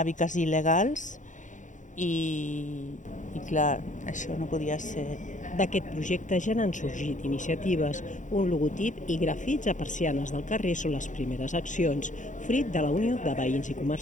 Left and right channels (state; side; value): late; right; 0.36 ms